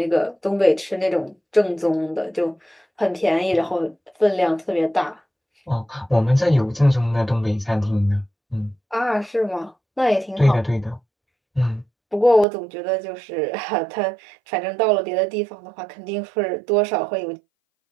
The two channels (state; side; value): drops out; left; at 12.5 s